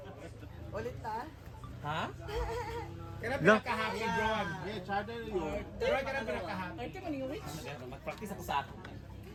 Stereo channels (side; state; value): both; identical; correlation 1.00